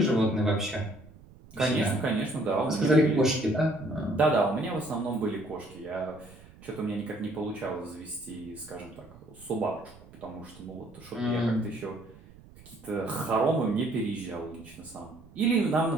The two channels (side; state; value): right; noise; rumble, 22 dB below the sound